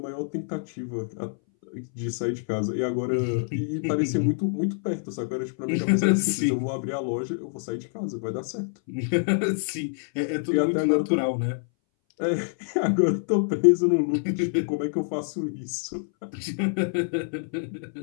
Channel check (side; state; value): right; silent; 60 dB below the other